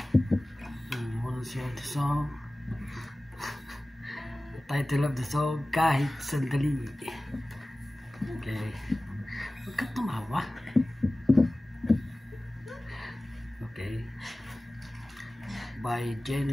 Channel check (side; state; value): both; normal; correlation 0.97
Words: Wanna share the song. The title of the song, Kahit Sandali. Okay. Huwag ka tumawa. Okay. By